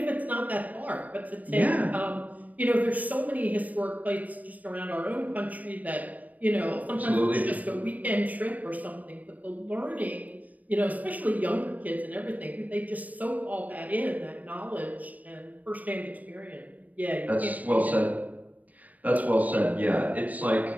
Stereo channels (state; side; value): late; left; 0.074 ms